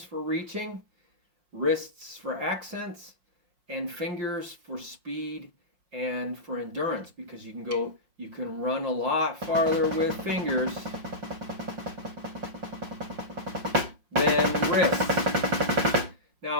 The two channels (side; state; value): left; late; 5.6 ms